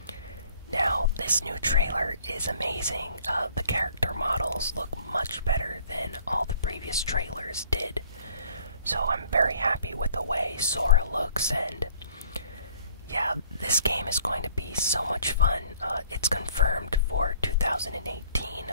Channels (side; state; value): both; inverted; correlation -0.55